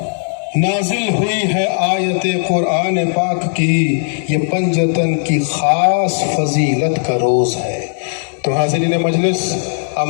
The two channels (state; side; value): silent; right; digital silence